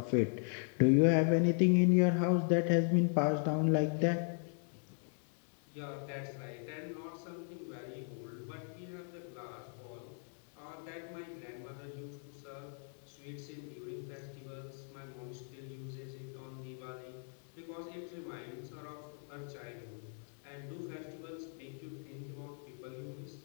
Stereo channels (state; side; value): silent; right; 52 dB below the other